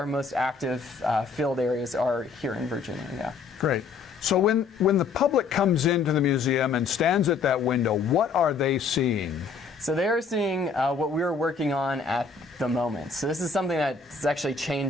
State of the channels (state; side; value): quieter; right; 4.9 dB